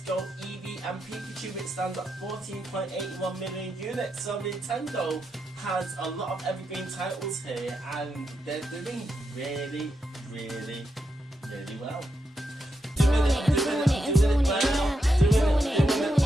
Go Eevee and Pikachu, which stands at 14.81 million units. So Nintendo has a lot of evergreen titles here, and they're doing really well. Doing it well.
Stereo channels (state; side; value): normal; both; correlation 0.84